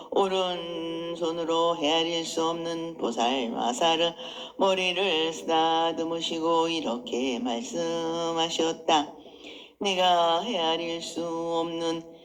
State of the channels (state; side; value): identical; both; correlation 1.00